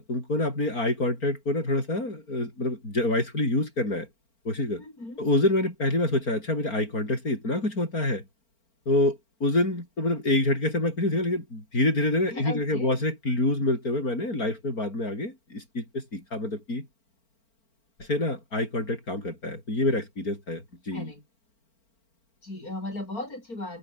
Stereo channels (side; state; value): right; late; 4.4 ms